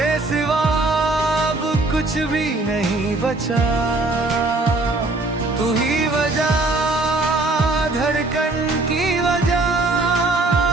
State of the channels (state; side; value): quieter; left; 3.1 dB